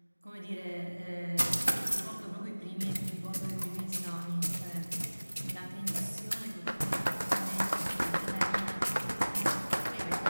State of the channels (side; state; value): both; inverted; correlation -1.00